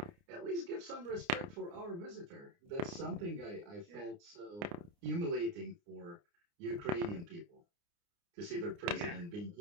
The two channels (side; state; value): left; late; 29 ms